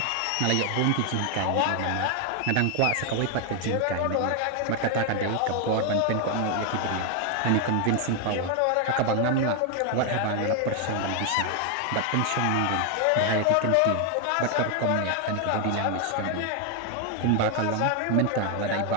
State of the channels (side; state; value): both; different; correlation 0.01